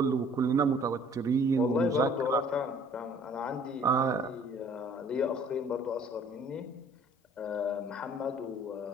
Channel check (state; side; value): normal; both; correlation 0.55